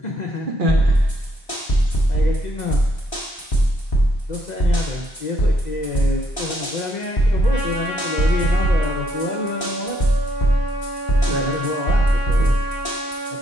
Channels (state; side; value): normal; both; correlation 0.71